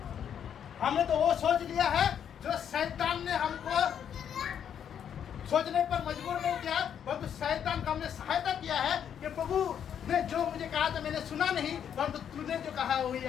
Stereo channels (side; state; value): right; quieter; 8.7 dB